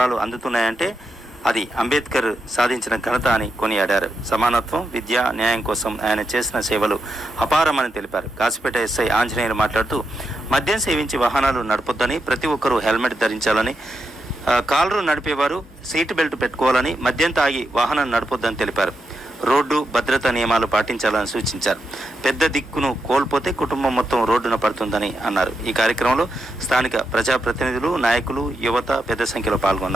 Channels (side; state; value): both; normal; correlation 0.85